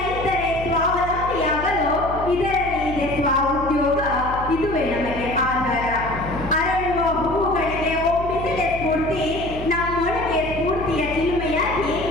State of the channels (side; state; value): left; noise; hum, 9 dB below the sound